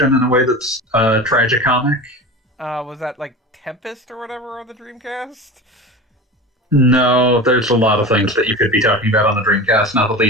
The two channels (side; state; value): both; normal; correlation 0.31